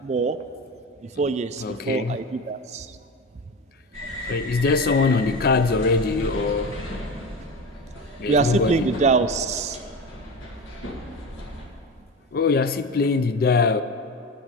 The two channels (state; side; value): normal; both; correlation 0.25